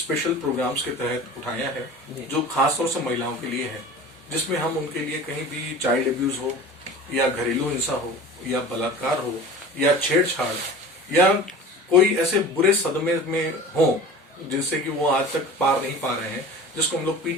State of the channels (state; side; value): normal; both; correlation 0.38